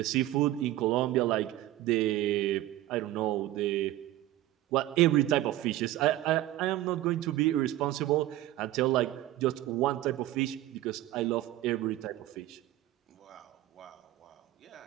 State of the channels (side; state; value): left; quieter; 14.9 dB